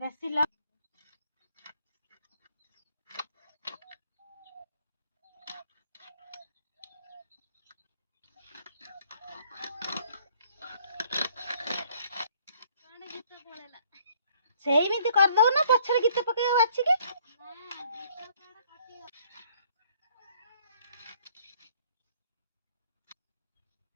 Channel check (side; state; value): both; inverted; correlation -0.61